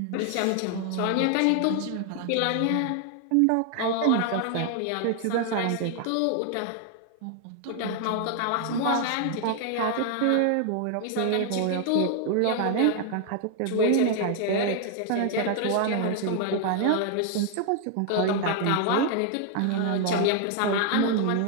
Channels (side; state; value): both; different; correlation 0.00